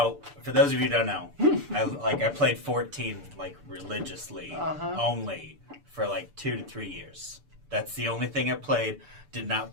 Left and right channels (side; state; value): left; late; 6.9 ms